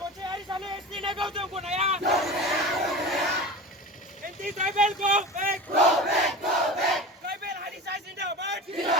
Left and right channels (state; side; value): normal; both; correlation 0.31